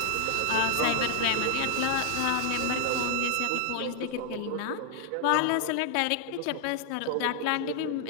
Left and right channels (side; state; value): both; different; correlation 0.00